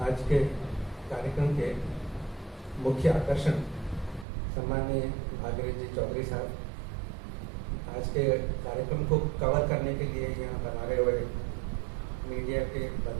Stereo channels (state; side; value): drops out; left; at 4.2 s